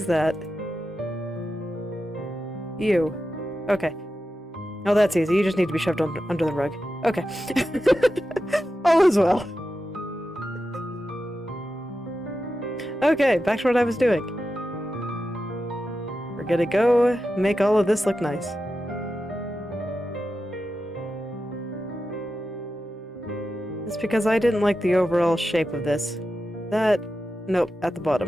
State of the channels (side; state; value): both; normal; correlation 0.91